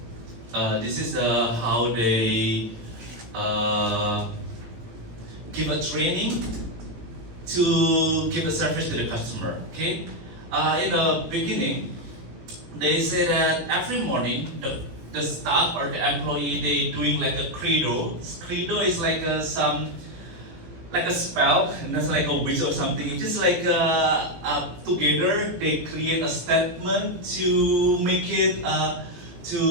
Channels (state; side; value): late; left; 18 ms